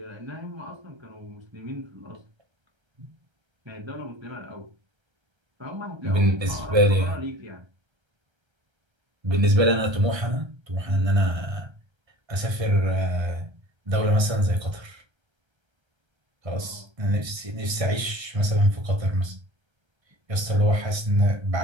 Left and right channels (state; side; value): late; left; 1.3 ms